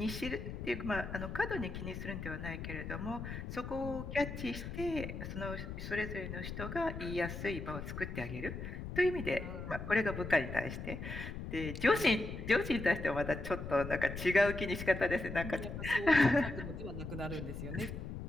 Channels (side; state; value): left; noise; rumble, 7 dB below the sound